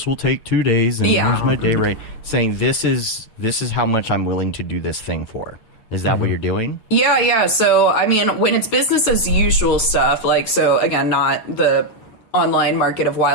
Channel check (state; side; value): late; right; 9.1 ms